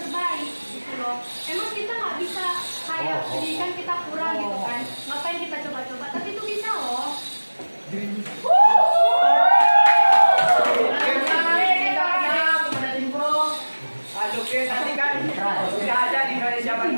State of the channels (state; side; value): inverted; both; correlation -1.00